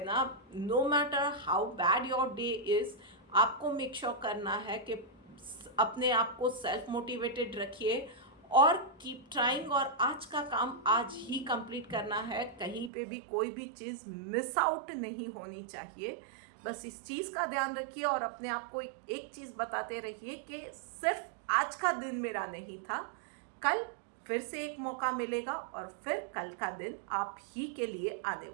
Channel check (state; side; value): drops out; left; at 12.9 s